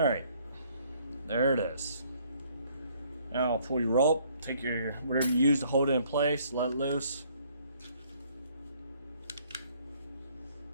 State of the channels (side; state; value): both; inverted; correlation -0.63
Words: There it is. Now pull your rope, take your whatever you use to hold it in place, let it loose.